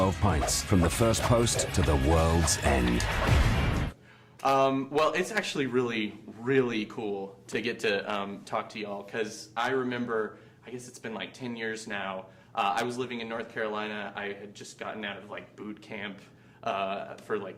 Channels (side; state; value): both; identical; correlation 1.00